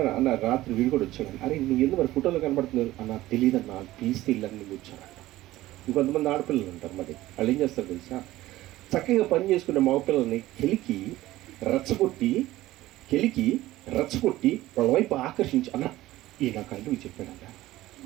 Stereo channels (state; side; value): quieter; left; 16.3 dB